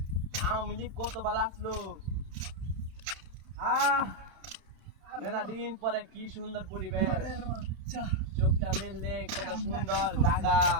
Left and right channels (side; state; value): left; late; 31 ms